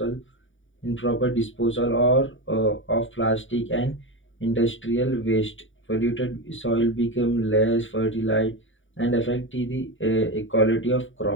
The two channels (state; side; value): late; right; 0.57 ms